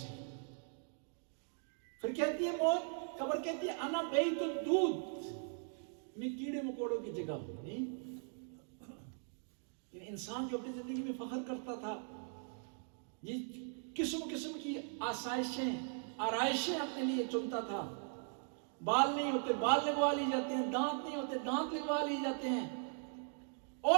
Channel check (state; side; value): silent; left; 51 dB below the other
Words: پھر کہتی ہے موت، قبر کہتی ہے انا بیت الدود، میں کیڑے مکوڑوں کی جگہ ہوں۔ انسان جو اپنی زندگی میں فخر کرتا تھا، یہ قسم قسم کی آسائشیں، آرائشیں اپنے لیے چنتا تھا، بال نہیں ہوتے بال لگوا لی جاتے ہیں، دانت نہیں ہوتے دانت لگوا لی جاتے ہیں،